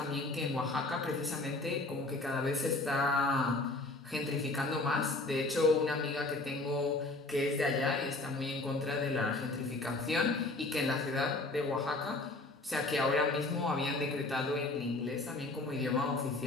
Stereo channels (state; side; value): quieter; right; 3.0 dB